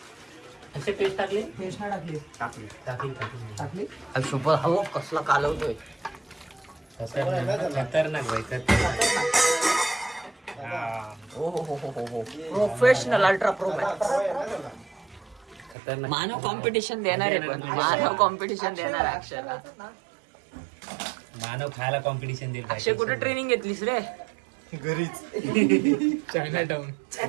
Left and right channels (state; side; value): drops out; left; at 15.8 s